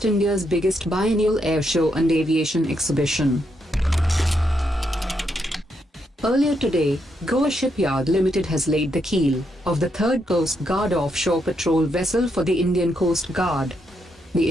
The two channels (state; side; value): normal; both; correlation 0.79